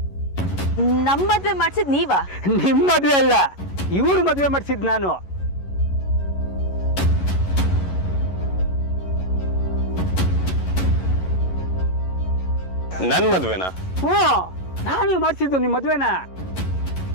ನಮ್ಮ ಮದುವೆ ಮಾಡಿಸಿದ್ ನೀವಾ? ನಿಮ್ ಮದುವೆ ಅಲ್ಲ, ಇವ್ರು ಮದುವೆ ಮಾಡಿಸಿದ್ ನಾನು. ನನ್ ಮದ್ವೆನಾ? ಹ್ಞೂ, ನಾನೇ ಮಾಡಿಸಿದ್ದು ನಿಮ್ ಮದುವೆನ.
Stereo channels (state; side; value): late; right; 11 ms